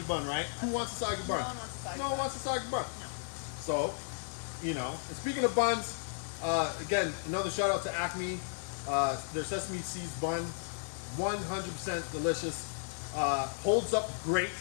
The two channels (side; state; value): right; silent; digital silence